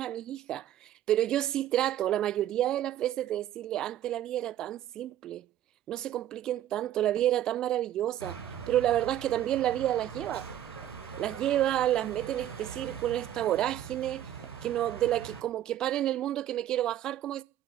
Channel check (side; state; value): left; quieter; 12.1 dB